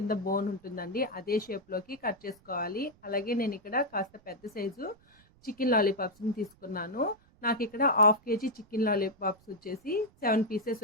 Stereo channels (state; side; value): noise; right; rumble, 29 dB below the sound